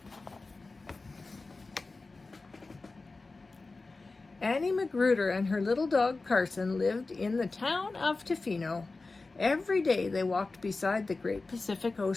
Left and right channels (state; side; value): quieter; right; 3.6 dB